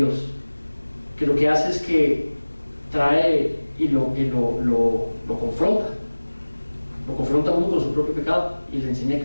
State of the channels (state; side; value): inverted; both; correlation -1.00